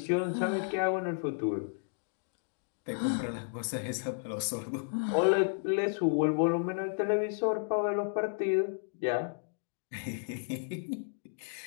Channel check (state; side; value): silent; right; digital silence